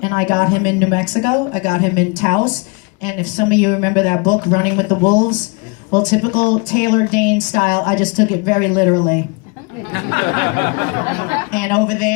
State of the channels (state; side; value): quieter; right; 30.3 dB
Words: and I got him in New Mexico. I got him in Taos, and if some of you remember that book, Running with the Wolves, well, typical Taylor Dayne style, I just took it very literally. And over